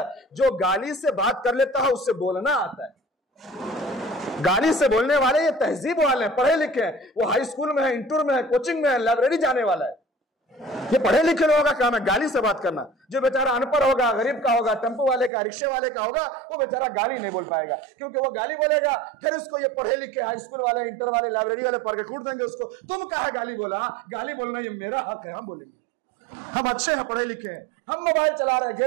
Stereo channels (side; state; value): left; drops out; at 15.3 s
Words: جو گالی سے بات کر لیتا ہے اس سے بولنا آتا ہے. گالی سے بولنے والے یہ تہذیب والے ہیں، پڑھے لکھے ہیں، وہ ہائی اسکول میں ہے، انٹر میں ہے، کوچنگ میں ہے، لائبریری جانے والا ہے. یہ پڑھے لکھے لوگوں کا کام ہے گالی سے بات کرنا. جو بیچارہ ان پڑھ ہوگا، غریب کا ہوگا، ٹیمپو والے کا، رکشے والے کا ہوگا، وہ بیچارہ گالی نہیں بول پائے گا، کیونکہ وہ گالی بولے گا پھر اس کو یہ پڑھے لکھے ہائی اسکول والے، انٹر والے، لائبریری والے پڑھ کے کوٹ دیں گے اس کو. تم کہا گالی بولا؟ گالی بولنا یہ میرا حق ہے، ہم بولیں گے. ہم اچھے ہیں، پڑھے لکھے ہیں، ہم موبائل چلا رہے ہیں،